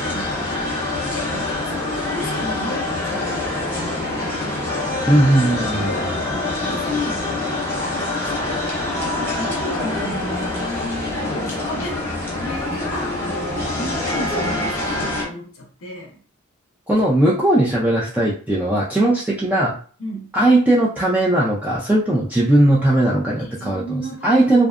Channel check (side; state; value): both; normal; correlation 0.62